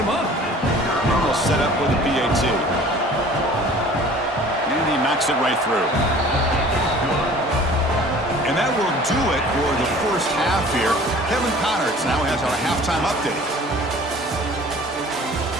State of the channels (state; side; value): normal; both; correlation 0.47